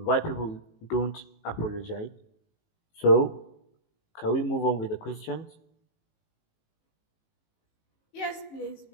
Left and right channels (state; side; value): late; right; 18 ms